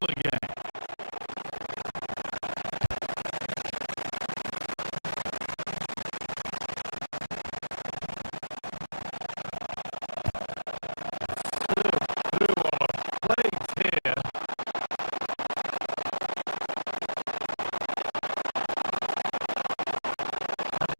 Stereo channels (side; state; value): both; inverted; correlation -1.00